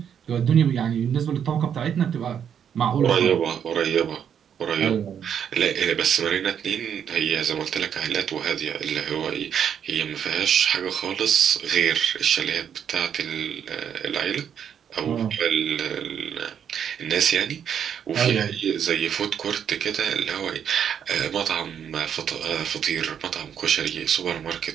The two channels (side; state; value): left; quieter; 8.4 dB